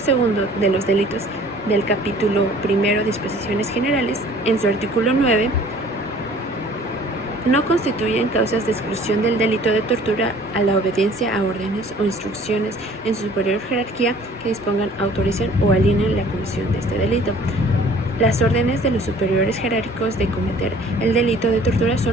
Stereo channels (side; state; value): both; normal; correlation 0.51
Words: de los delitos del capítulo primero, disposiciones generales, en su artículo 9, no constituyen causas de exclusión del delito de tortura a la obediencia a órdenes o instrucciones en su superior jerarquía que dispongan, autoricen o alineen la comisión de este delito. Las órdenes de los superiores jerárquicos de cometer el delito de tortura